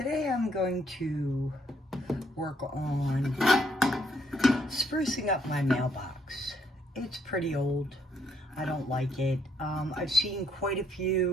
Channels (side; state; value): both; normal; correlation 0.70